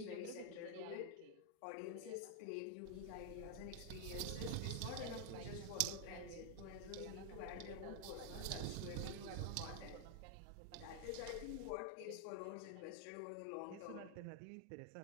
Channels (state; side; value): different; both; correlation 0.00